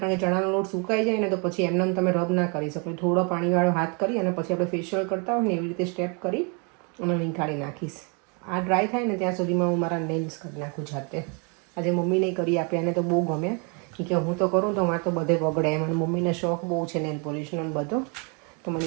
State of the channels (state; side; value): quieter; left; 34.9 dB